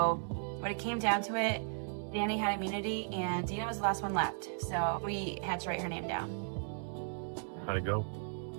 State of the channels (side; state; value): left; silent; digital silence